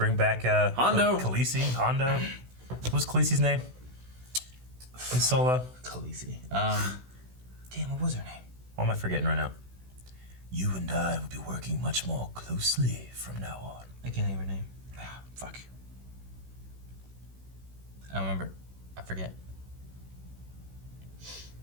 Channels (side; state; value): left; late; 16 ms